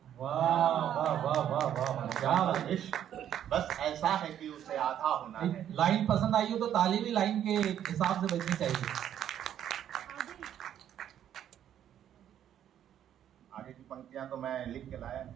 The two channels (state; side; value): quieter; left; 10.3 dB